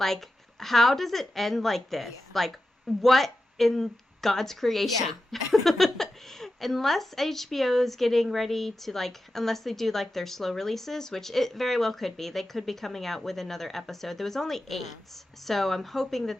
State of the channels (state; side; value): normal; both; correlation 0.92